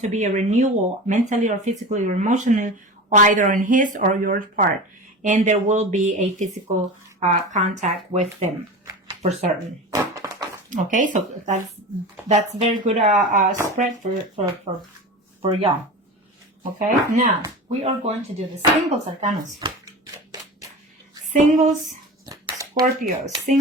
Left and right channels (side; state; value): both; normal; correlation 0.30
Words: be a renewal mentally or physically or emotionally, either on his or your part. And there will be a physical contact with them for certain. Okay, so that's very good spread for y'all. Okay, now we are going to do the singles arcanas. Single